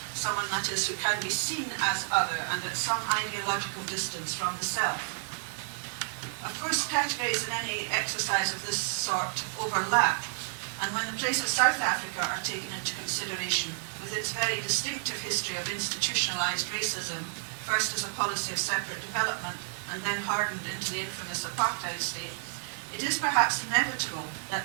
someone, that is, who can be seen as other and at some ideological distance from the self. Of course, categories in any exercise of this sort overlap, and when the plays of South Africa are taken into consideration, with its very distinctive history of institutionalized racism, first as a policy of separate development and then hardened into the infamous apartheid state, it is perhaps inevitable that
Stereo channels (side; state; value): left; silent; digital silence